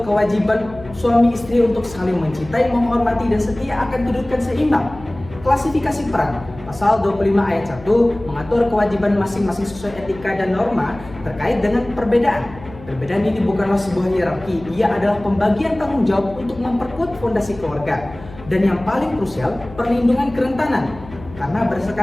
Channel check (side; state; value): left; noise; hum, 17 dB below the sound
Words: kewajiban suami istri untuk saling mencintai, menghormati, dan setia akan kedudukan seimbang. Klasifikasi peran, pasal 25 ayat 1 mengatur kewajiban masing-masing sesuai etika dan norma terkait dengan perbedaan. Perbedaan ini bukanlah sebuah hierarki, ia adalah pembagian tanggung jawab untuk memperkuat fondasi keluarga. Dan yang paling krusial, perlindungan kerentanan. Karena